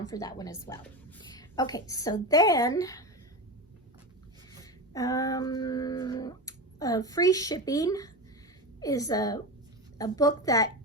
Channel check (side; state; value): both; normal; correlation 0.22